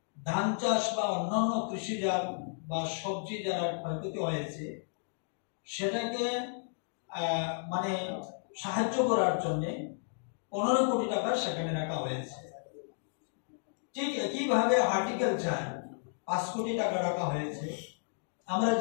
ধান চাষ বা অন্যান্য কৃষিজাত বা সবজি যারা ক্ষয়ক্ষতি হয়েছে সেটাকে মানে সাহায্য করার জন্য 15 কোটি টাকা সেখানে রাখা হয়েছে। ঠিক একইভাবে হর্টিকালচার 5 কোটি টাকা রাখা হয়েছে। আমরা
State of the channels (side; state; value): right; silent; digital silence